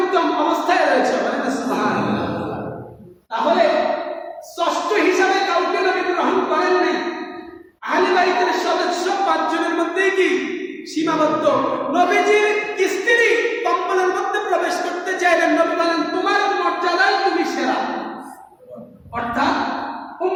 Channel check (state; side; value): identical; both; correlation 1.00